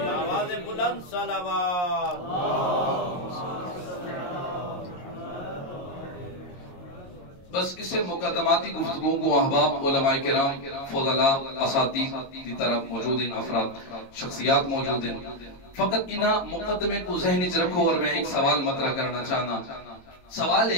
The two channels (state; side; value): late; right; 22 ms